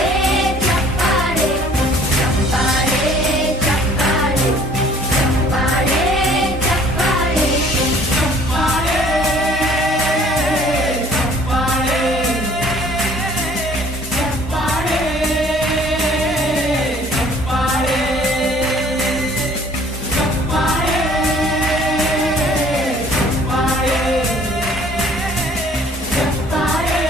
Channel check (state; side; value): normal; both; correlation 0.55